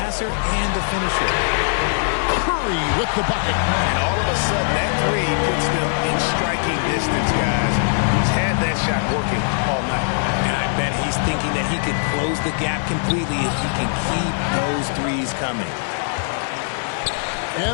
and a finisher. Curry with the bucket. And all of a sudden, that 3 puts them in striking distance, guys. He's had that shot working all night. And I bet he's thinking that he could close the gap completely if he can keep those 3s coming.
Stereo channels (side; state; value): right; silent; digital silence